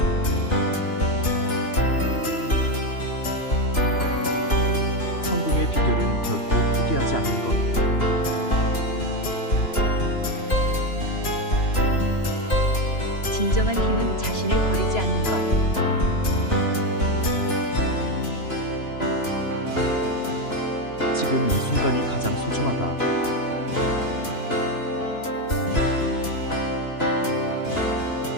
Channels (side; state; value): right; late; 2.9 ms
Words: 지금 이 순간이 가장 소중하다.